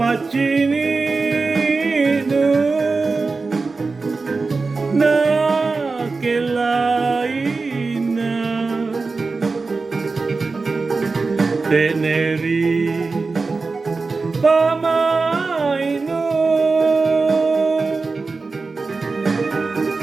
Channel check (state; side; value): quieter; left; 4.0 dB